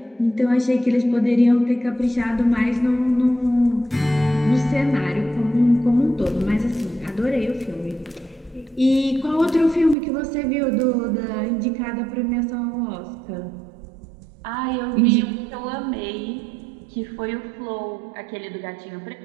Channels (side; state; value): left; drops out; at 10.0 s